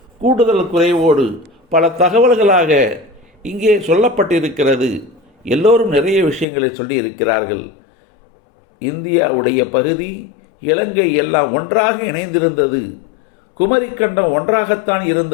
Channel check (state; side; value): drops out; right; at 6.5 s